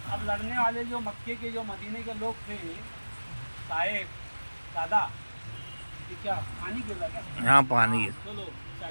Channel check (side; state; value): both; inverted; correlation -1.00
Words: अब लड़ने वाले जो मक्के के जो मदीने के लोग थे, साहेब दादा, ये क्या पानी गिर रहा क्या? यहाँ पानी है। चलो